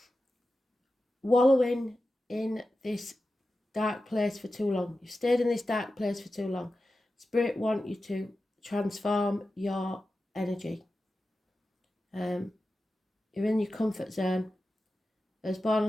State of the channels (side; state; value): both; normal; correlation 0.93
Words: wallowing in this dark place for too long. You've stayed in this dark place for too long. Spirit want you to transform your energy. You're in your comfort zone. Those born